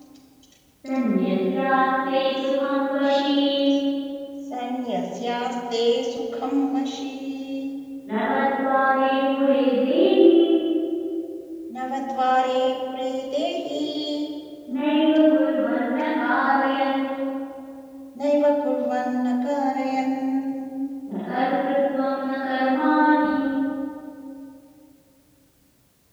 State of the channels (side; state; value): both; identical; correlation 1.00